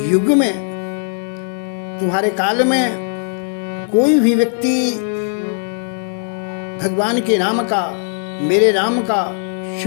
युग में, तुम्हारे काल में कोई भी व्यक्ति भगवान के नाम का, मेरे नाम का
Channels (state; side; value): silent; right; 67 dB below the other